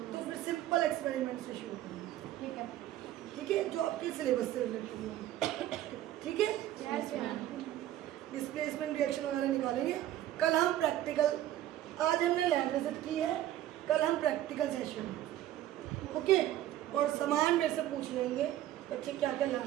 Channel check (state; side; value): quieter; left; 13.2 dB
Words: तो फिर सिंपल एक्सपेरिमेंट से शुरू करेंगे, ठीक है, जो आपके सिलेबस से रिलेटेड होंगे, ठीक है। डिस्प्लेसमेंट रिएक्शन वगैरह निकालेंगे। कल हम प्रैक्टिकल, आज हमने लैब विजिट की है, कल हम प्रैक्टिकल सेशन, ओके। और सामान मेरे से पूछ लेंगे बच्चे क्या क्या